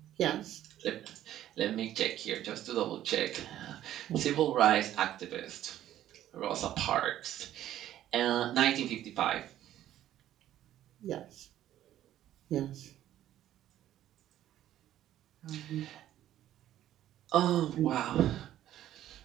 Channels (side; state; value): left; quieter; 12.5 dB